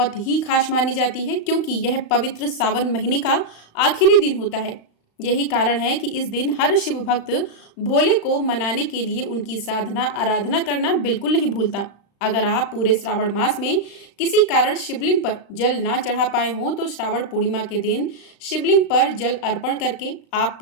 ही खास मानी जाती है, क्योंकि यह पवित्र सावन महीने का आखिरी दिन होता है। यही कारण है कि इस दिन हर शिव भक्त भोले को मनाने के लिए उनकी साधना आराधना करना बिल्कुल नहीं भूलता। अगर आप पूरे श्रावण मास में किसी कारण शिवलिंग पर जल ना चढ़ा पाए हों तो श्रावण पूर्णिमा के दिन शिवलिंग पर जल अर्पण करके आप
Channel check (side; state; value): right; late; 35 ms